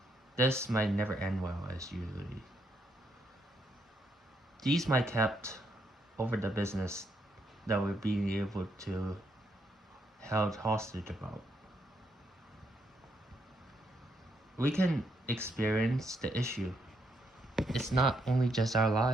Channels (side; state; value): both; normal; correlation 0.76